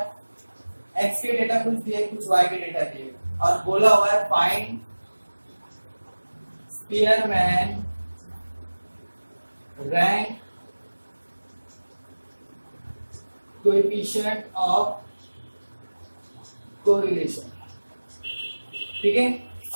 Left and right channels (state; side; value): inverted; both; correlation -1.00